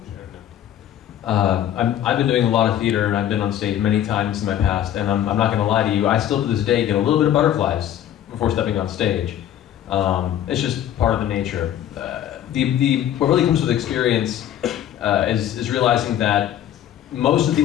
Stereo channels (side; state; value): right; quieter; 11.2 dB